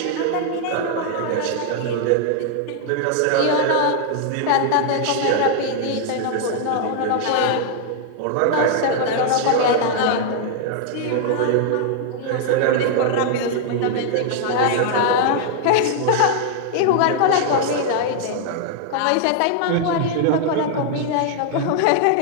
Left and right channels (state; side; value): different; both; correlation 0.00